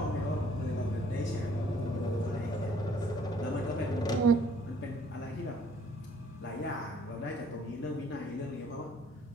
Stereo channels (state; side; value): normal; both; correlation 0.60